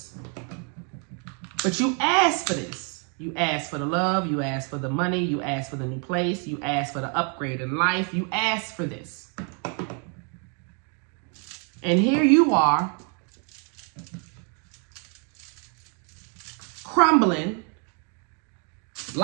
but you asked for this. You asked for the love, you asked for the money, you asked for the new place, you asked for the upgrade in life, you asked for this. And here you are, crumbling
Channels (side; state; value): left; quieter; 38.8 dB